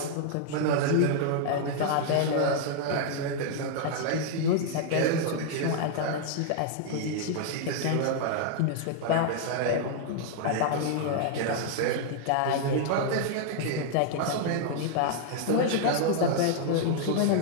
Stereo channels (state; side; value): different; both; correlation -0.01